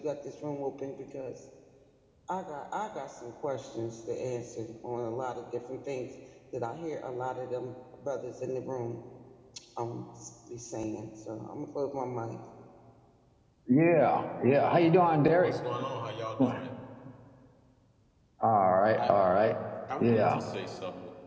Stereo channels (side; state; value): both; identical; correlation 1.00